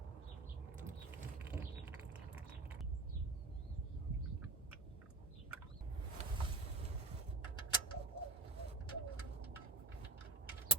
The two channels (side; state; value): left; quieter; 3.2 dB